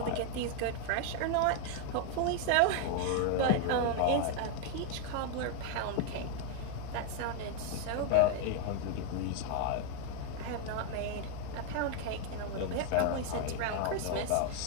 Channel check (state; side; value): different; both; correlation 0.00